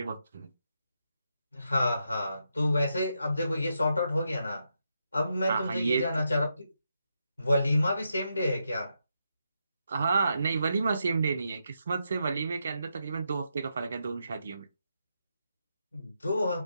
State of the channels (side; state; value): both; inverted; correlation -0.83